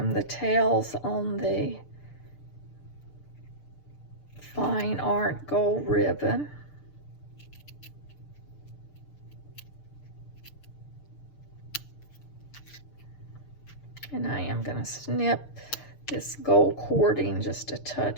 the tails on the Fine Art gold ribbon. And I am going to snip this gold cording just a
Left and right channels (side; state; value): right; late; 6.8 ms